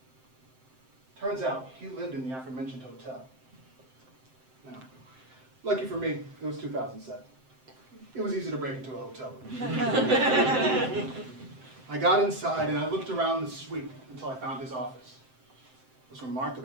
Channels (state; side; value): late; left; 7.7 ms